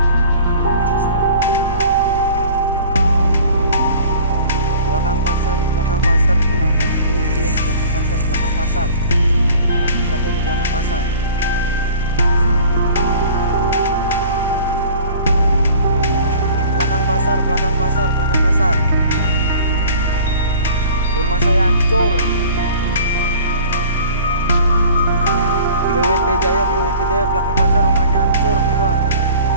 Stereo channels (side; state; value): both; inverted; correlation -0.46